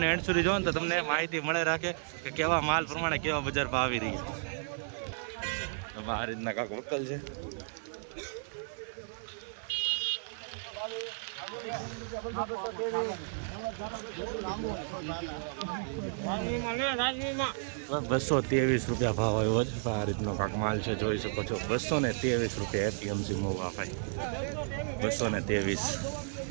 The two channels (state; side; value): silent; left; 56 dB below the other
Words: એન્ડ સુધી જોવો ને તો તમને માહિતી મળે રાખે કે કેવા માલ પ્રમાણે કેવા બજાર ભાવ આવી રહ્યા. આ રીતના કાંક વકલ છે. ₹223 રૂપિયા ભાવ આવ્યો છે. આ રીતનો કાંક માલ છે, જોઈ શકો છો. 223 રૂપિયા એપીએમસી મોવા ભાઈ. 223.